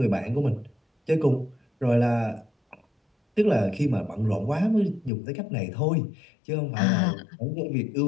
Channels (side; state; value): right; drops out; at 5.1 s